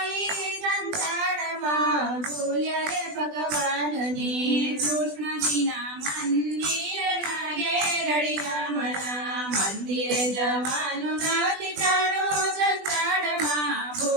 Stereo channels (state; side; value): late; left; 20 ms